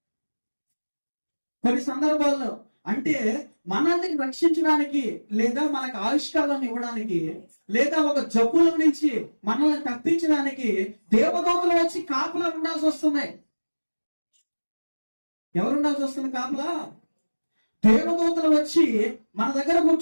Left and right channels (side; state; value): both; inverted; correlation -1.00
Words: కొన్ని సందర్భాల్లో అంటే మనల్ని రక్షించడానికి లేదా మనకు ఆవిష్కారాన్ని ఇవ్వడానికి లేదా ఒక జబ్బుల నుంచి మనల్ని తప్పించడానికి దేవదూతలు వచ్చి కాపులా ఉండాల్సి వస్తుంది. ఎవరు ఉండాల్సి వస్తుంది కాపులా? దేవదూతలు వచ్చి మన దగ్గర